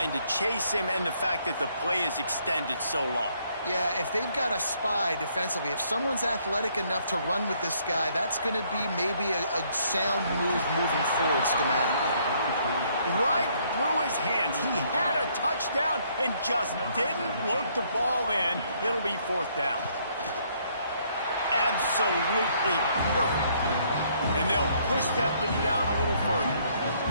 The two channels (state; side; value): inverted; both; correlation -0.67